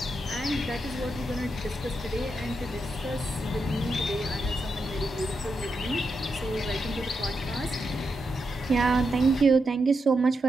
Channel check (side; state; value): both; normal; correlation 0.85